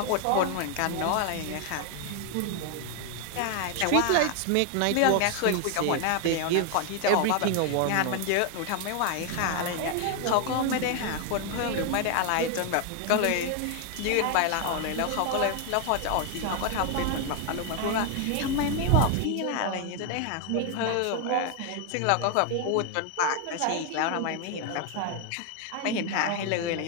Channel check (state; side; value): different; both; correlation 0.01